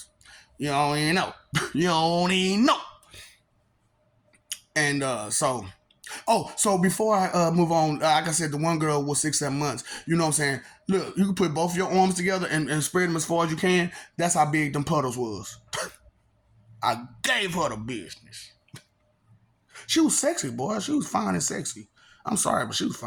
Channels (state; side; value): identical; both; correlation 1.00